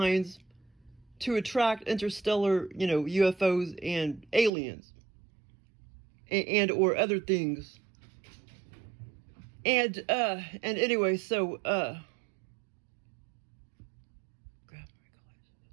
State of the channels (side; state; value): left; drops out; at 4.5 s